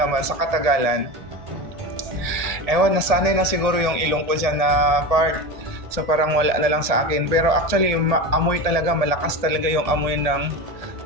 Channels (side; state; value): left; late; 1.7 ms